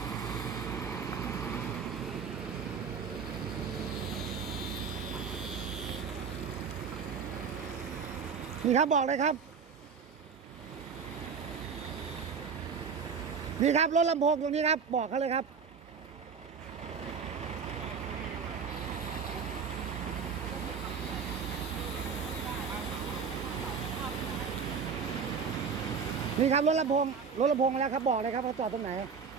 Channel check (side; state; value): left; quieter; 6.0 dB